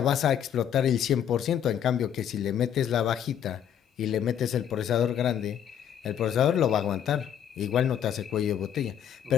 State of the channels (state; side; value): quieter; right; 9.3 dB